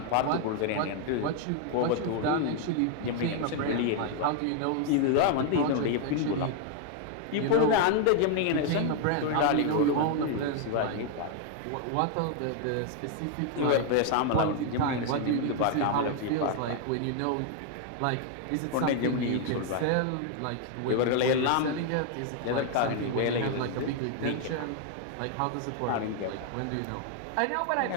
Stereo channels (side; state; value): both; different; correlation 0.00